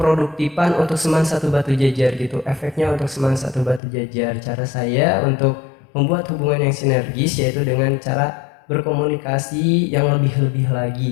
untuk Seman 1 Batu Jajar gitu. Efeknya untuk Seman 1 Batu Jajar. Cara saya untuk membuat hubungan yang sinergis yaitu dengan cara berkomunikasi yang lebih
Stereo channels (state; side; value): drops out; right; at 3.8 s